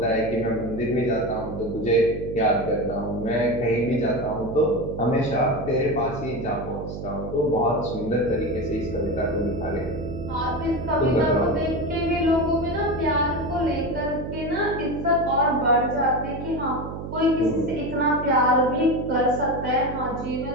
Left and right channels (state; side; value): noise; right; hum, 8 dB below the sound